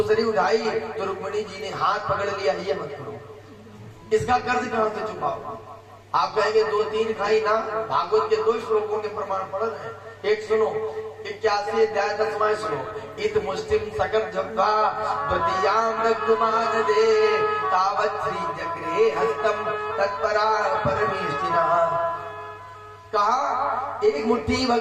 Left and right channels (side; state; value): both; identical; correlation 1.00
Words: उठाई तो रुक्मिणी जी ने हाथ पकड़ लिया, ये मत करो, इसका कर्ज कहां से चुकाओ। आप कहेंगे 2-3 खाई ना, भागवत के 2 श्लोकों के प्रमाण पढ़ रहे हैं। एक सुनो, 81 अध्याय 10वां श्लोक, इत मुस्लिम सकट जब्बा द्वितीयाम नग्मान दे तावत् श्री जगरे हस्तम तत्परा परमेष्टिना। कहा एक मुट्ठी